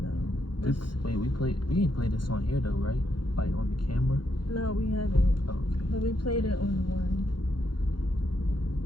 know. We ain't played this on here though, right? Like on the camera? No, we haven't. Oh, okay. But we played it on the one.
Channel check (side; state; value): right; late; 0.72 ms